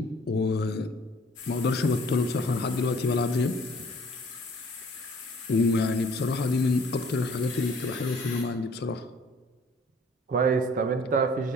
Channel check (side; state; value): both; normal; correlation 0.55